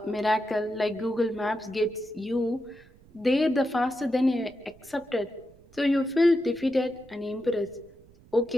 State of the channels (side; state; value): right; noise; rumble, 26 dB below the sound